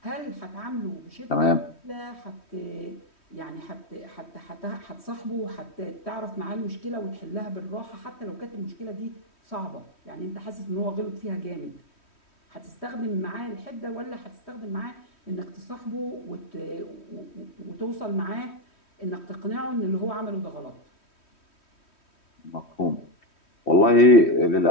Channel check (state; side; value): late; right; 3.1 ms